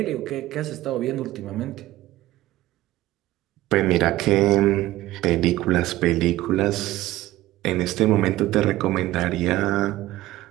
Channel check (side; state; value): left; quieter; 16.2 dB